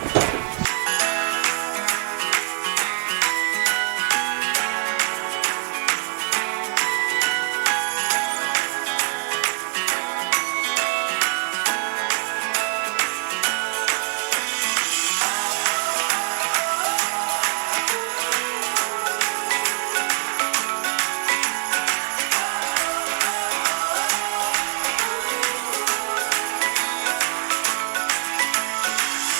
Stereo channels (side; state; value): left; silent; 60 dB below the other